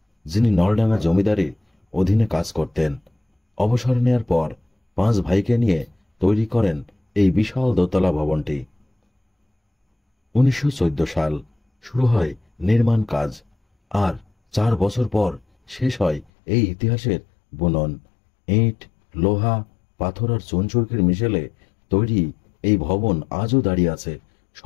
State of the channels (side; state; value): right; drops out; at 16.2 s